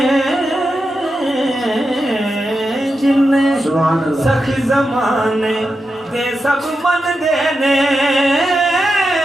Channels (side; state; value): both; normal; correlation 0.88